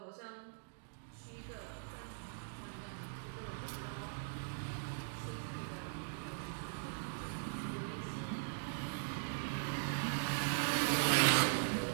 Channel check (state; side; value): silent; left; digital silence